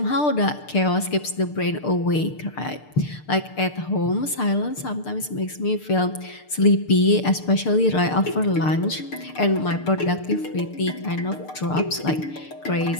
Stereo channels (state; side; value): late; right; 6.7 ms